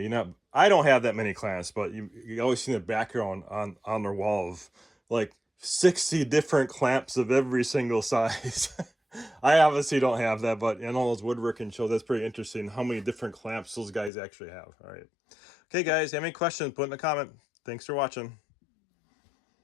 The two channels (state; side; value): drops out; right; at 14.1 s